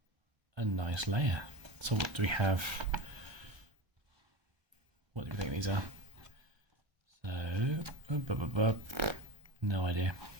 a nice layer. So what do we have? What do you think these are? So no idea.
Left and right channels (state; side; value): late; left; 1.3 ms